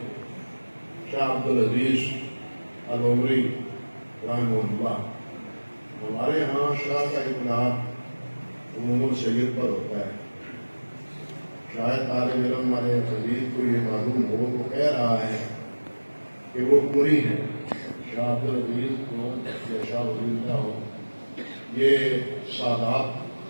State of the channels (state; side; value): inverted; both; correlation -1.00